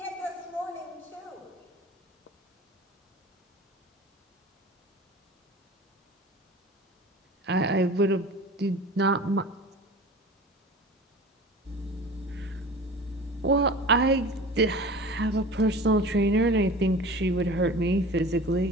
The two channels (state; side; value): normal; both; correlation 0.38